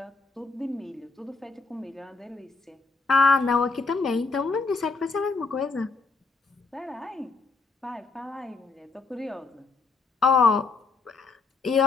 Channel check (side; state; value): right; quieter; 4.1 dB